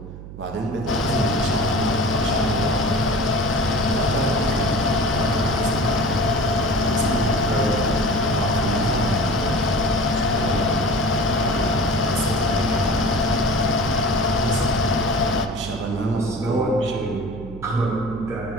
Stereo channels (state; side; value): noise; right; hum, 13 dB below the sound